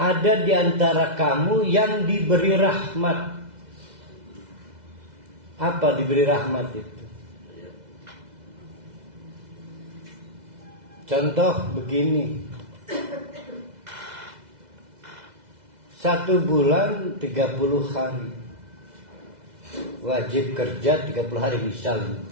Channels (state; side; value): late; left; 2.0 ms